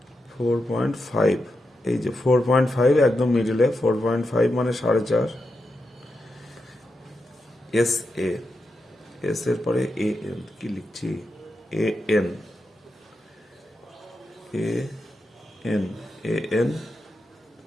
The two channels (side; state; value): both; normal; correlation 0.87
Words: 4.5। এই যে 4.5 একদম মিডিলে, 4.5 মানে 4.5। এস এ, এস এর পরে এ এন কি লিখছি? A N, A N, A N